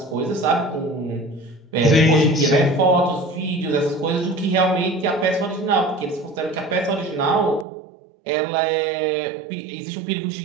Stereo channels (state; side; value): drops out; left; at 7.7 s